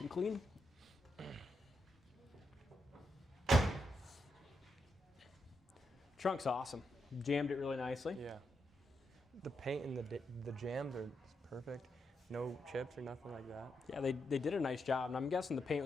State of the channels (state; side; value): normal; both; correlation 0.83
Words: and clean. Trunk's awesome. Jammed it really nicely. Yeah. The paint and the jams are perfect. No chips or nothing like that. Yeah, they did a nice job, and I'm guessing the paint